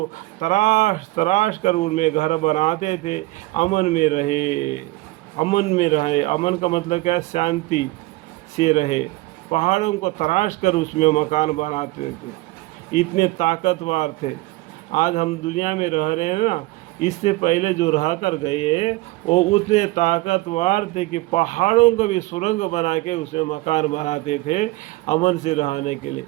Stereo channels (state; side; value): quieter; left; 20.2 dB